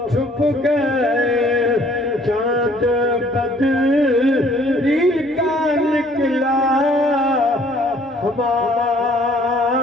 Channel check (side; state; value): both; normal; correlation 0.59